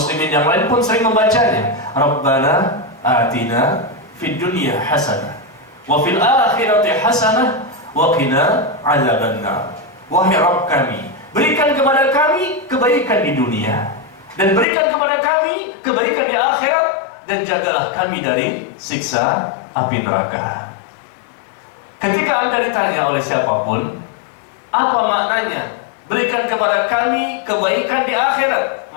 yang lain pun sering membacanya. Rabbana atina fid dunya hasanah wa fil akhirati hasanah wa qina adzabannar. Wahai Rabb kami, berikan kepada kami kebaikan di dunia, dan berikan kepada kami kebaikan di akhirat, dan jagalah kami dari siksa api neraka. Ketika Anda ditanya oleh siapapun, apa maknanya berikan kepada kami kebaikan di akhirat?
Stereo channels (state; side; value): drops out; right; at 14.7 s